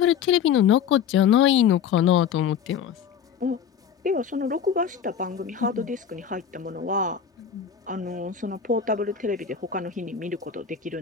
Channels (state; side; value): quieter; right; 7.8 dB